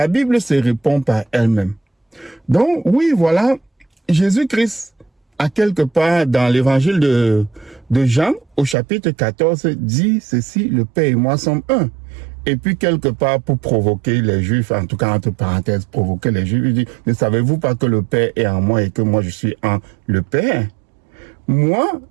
Bible se répond par elle-même. Donc, oui, voilà, Jésus-Christ, à quelque part dans l'évangile de Jean, au chapitre 14, dit ceci, le Père et moi sommes un. Et puis, quelque part, pour provoquer les Juifs, en tout cas, entre parenthèses, provoquer les Juifs, il dit, ne savez-vous pas que le Père est en moi et que moi je suis en le Père? Moi,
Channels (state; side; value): drops out; left; at 8.8 s